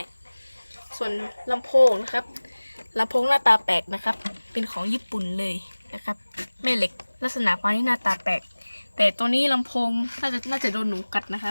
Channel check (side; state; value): both; inverted; correlation -1.00